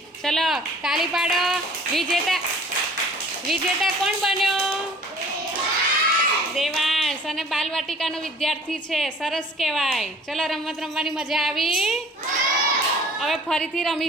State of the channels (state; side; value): normal; both; correlation 0.49